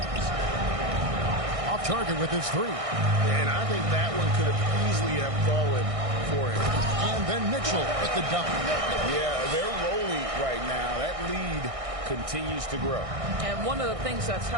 Off target with his 3. And I think that one could have easily have fallen for him. And then Mitchell with the dunk. Yeah, they're rolling right now. That lead continues to grow. And one of the things that's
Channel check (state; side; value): late; left; 1.6 ms